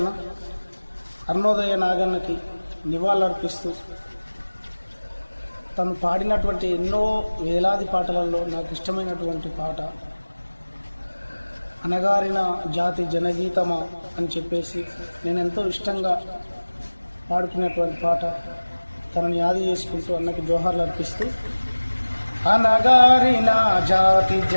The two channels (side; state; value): both; inverted; correlation -1.00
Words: అరుణోదయ నాగన్నకి నివాళులర్పిస్తూ తను పాడినటువంటి ఎన్నో వేలాది పాటలలో నాకు ఇష్టమైనటువంటి పాట అనగారిన జాతి జనగీతమా అని చెప్పేసి నేను ఎంతో ఇష్టంగా పాడుకునేటువంటి పాట తనని యాది చేసుకుంటూ అన్నకి జోహార్లు అర్పిస్తూ, అనగారిన జాతి